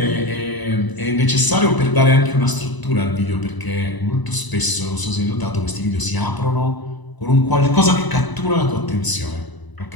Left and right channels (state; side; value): late; right; 1.0 ms